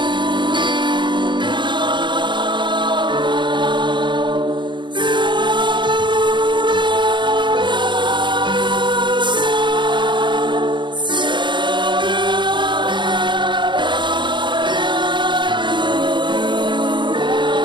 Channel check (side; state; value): left; late; 0.23 ms